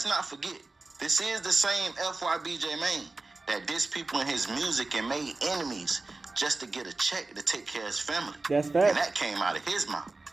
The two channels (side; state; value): left; quieter; 3.4 dB